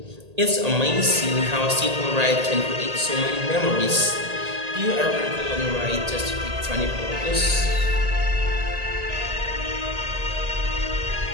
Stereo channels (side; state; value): left; late; 1.8 ms